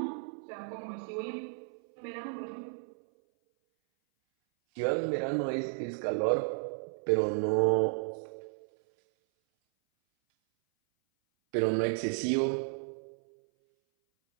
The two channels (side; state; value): left; silent; 56 dB below the other